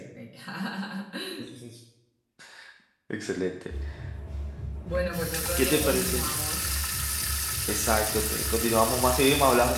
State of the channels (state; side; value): identical; both; correlation 1.00